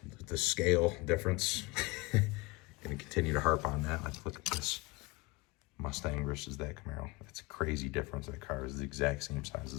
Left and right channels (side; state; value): right; quieter; 24.1 dB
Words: the scale difference. Gonna continue to harp on that. Let's look at this Mustang versus that Camaro. That's a crazy difference. That car is the exact same size